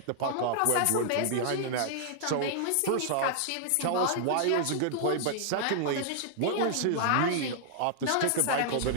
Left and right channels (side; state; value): both; different; correlation -0.01